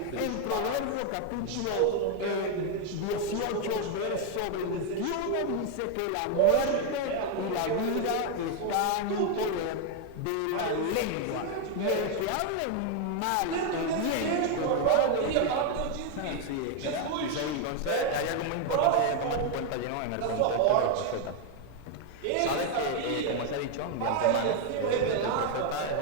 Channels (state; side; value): different; both; correlation 0.01